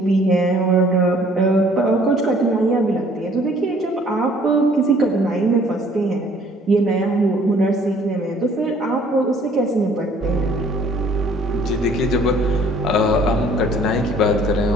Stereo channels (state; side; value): normal; both; correlation 0.57